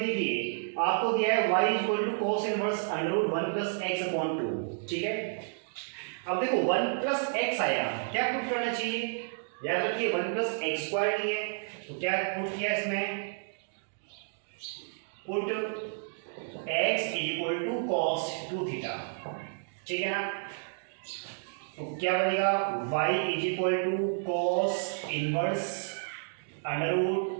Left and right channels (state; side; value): silent; left; digital silence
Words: आपको दिया है y equal to cos inverse under root 1 plus x upon 2, ठीक है। अब देखो 1 प्लस एक्स आया, क्या पुट करना चाहिए, याद रखिए 1 प्लस एक्स स्क्वायर नहीं है, तो क्या पुट किया इसमें, put x equal to cos 2 theta, ठीक है ना, तो क्या बनेगा, y is equal to cos inverse under root